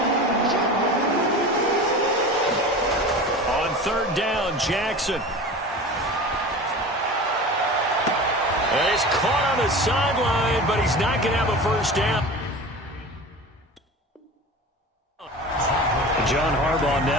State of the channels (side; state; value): both; normal; correlation 0.34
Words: On 3rd down, Jackson. And he's caught on the sideline, but he's not going to have a first down. John Harbaugh